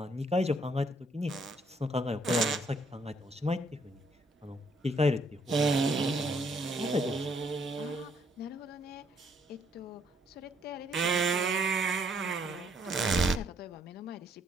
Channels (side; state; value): both; normal; correlation 0.69